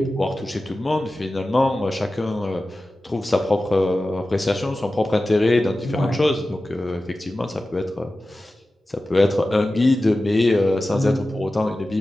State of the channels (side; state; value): both; normal; correlation 0.95